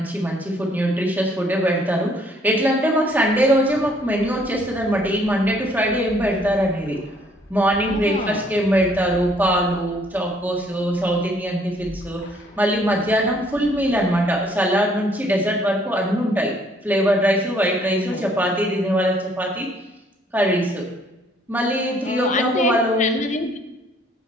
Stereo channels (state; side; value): normal; both; correlation 0.63